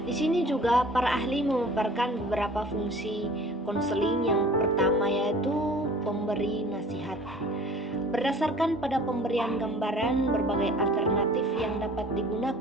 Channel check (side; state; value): both; normal; correlation 0.48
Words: di sini juga para ahli memaparkan beberapa fungsi konseling. Yang pertama yaitu pemberi nasihat. Berdasarkan pada pemberian gambaran berbagai alternatif yang dapat